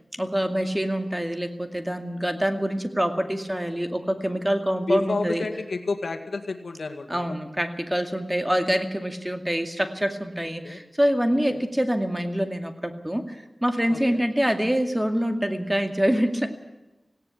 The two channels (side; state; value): both; normal; correlation 0.98